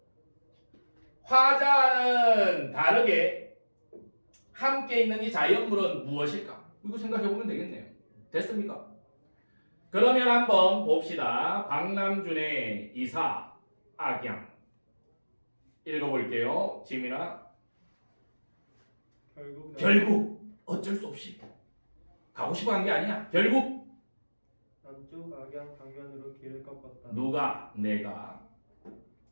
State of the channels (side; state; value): both; inverted; correlation -1.00